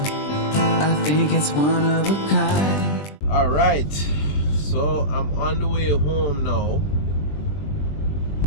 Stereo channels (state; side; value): late; right; 20 ms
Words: I think it's one of a kind. Alright, so I'm on the way home now.